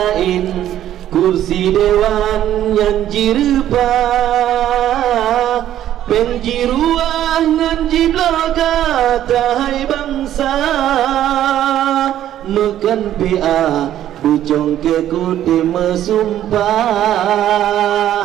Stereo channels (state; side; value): quieter; left; 11.9 dB